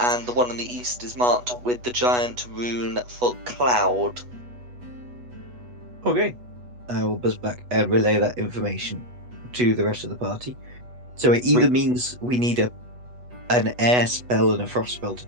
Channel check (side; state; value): left; late; 8.2 ms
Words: the one on the east is marked with the giant rune for cloud. Okay. I will buzz back and relay that information to the rest of the party. So it either means we need an air spell and a frost spell to